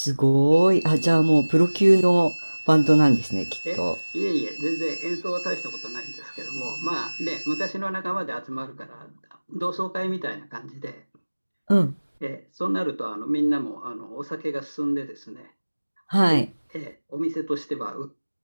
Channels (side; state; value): both; inverted; correlation -1.00